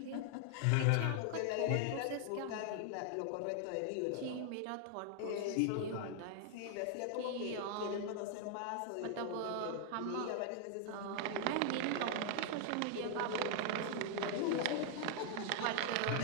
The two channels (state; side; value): different; both; correlation 0.00